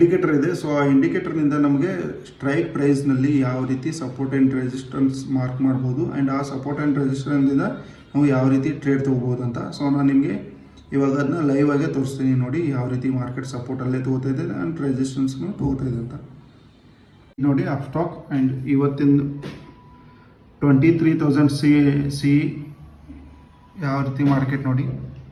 ಇದೆ. ಸೊ ಆ ಇಂಡಿಕೇಟರ್ನಿಂದ ನಮಗೆ ಸ್ಟ್ರೈಕ್ ಪ್ರೈಸ್ನಲ್ಲಿ ಯಾವ ರೀತಿ ಸಪೋರ್ಟ್ ಆ್ಯಂಡ್ ರೆಸಿಸ್ಟೆನ್ಸ್ ಮಾರ್ಕ್ ಮಾಡ್ಬೋದು ಆ್ಯಂಡ್ ಆ ಸಪೋರ್ಟ್ ಆ್ಯಂಡ್ ರೆಸಿಸ್ಟೆನ್ಸಿಂದ ನಾವು ಯಾವ ರೀತಿ ಟ್ರೇಡ್ ತೊಗೋಬೋದು ಅಂತ. ಸೊ ನಾನು ನಿಮಗೆ ಇವಾಗ ಅದನ್ನ ಲೈವ್ ಆಗೇ ತೋರಿಸ್ತೀನಿ ನೋಡಿ, ಯಾವ ರೀತಿ ಮಾರ್ಕೆಟ್ ಸಪೋರ್ಟಲ್ಲೇ ತೊಗೋತಾ ಇದೆ ಆ್ಯಂಡ್ ರೆಸಿಸ್ಟೆನ್ಸ್ನು ತೊಗೋತಾ ಇದೆ ಅಂತ. ನೋಡಿ ಅಪ್ಸ್ಟಾಕ್ ಆ್ಯಂಡ್ ಇವತ್ತಿನ 23,000 ಸಿ ಯಾವ ರೀತಿ ಮಾರ್ಕೆಟ್ ನೋಡಿ.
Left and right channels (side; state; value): both; identical; correlation 1.00